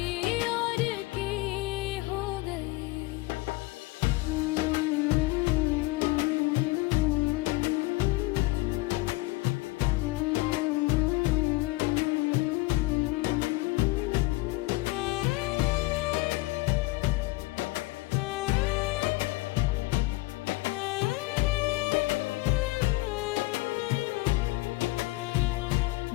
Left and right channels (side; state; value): right; quieter; 21.4 dB